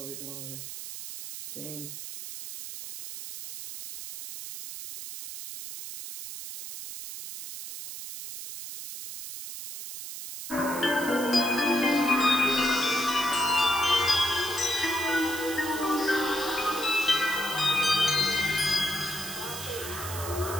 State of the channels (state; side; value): noise; right; hiss, 9 dB below the sound